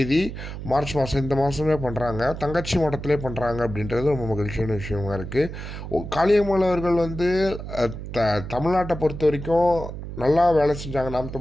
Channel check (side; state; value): right; noise; hum, 9 dB below the sound